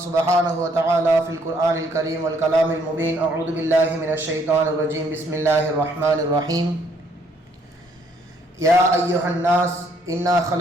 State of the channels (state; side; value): normal; both; correlation 0.67